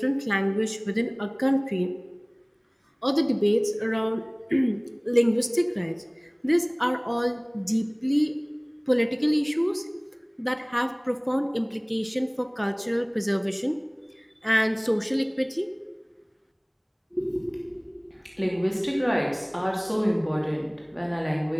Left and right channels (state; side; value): identical; both; correlation 1.00